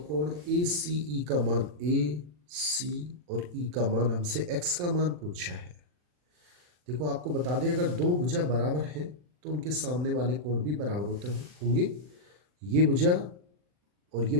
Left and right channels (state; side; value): late; left; 40 ms